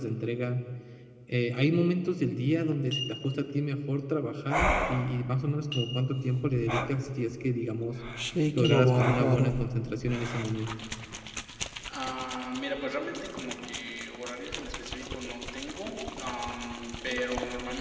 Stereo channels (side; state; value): both; identical; correlation 1.00